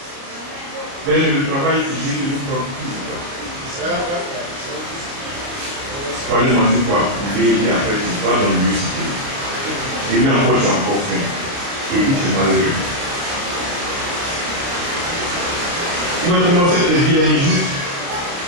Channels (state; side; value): late; left; 29 ms